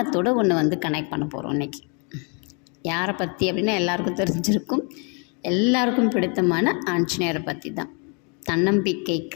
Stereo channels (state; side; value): quieter; right; 36.0 dB